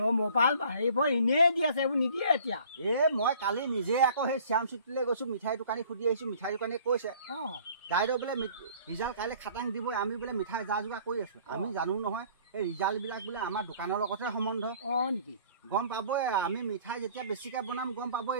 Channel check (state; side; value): inverted; both; correlation -0.53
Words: মোবাইল হেৰিবোৰ এনেই দি আছে এইবোৰ নিদিয়ে এতিয়া মই কালি নিজে আকৌ সেই শ্যাম চিটিলৈ গৈছোঁ মিঠাই দোকানী সুধি আহিছোঁ মিঠাই দোকানীয়ে কৈছে দাইদেউ বোলে ৰিজাল্ট কাইলৈ খাটাং দিব আমি বোলে মিঠাই যা যোগাৰ কৰি আছোঁ আমি জানো নহয় এই ৰিজাল্টবিলাক বোলে আমাৰ দোকানৰ লগতহে সম্বন্ধ নেকি গম পাবই আমি মিঠাই যেতিয়া বেছিকৈ বনাম গম পাবই